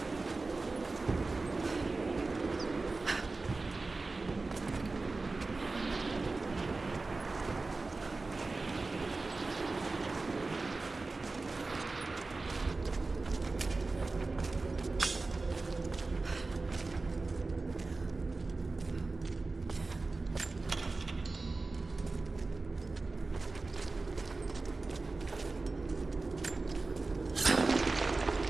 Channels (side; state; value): left; quieter; 3.6 dB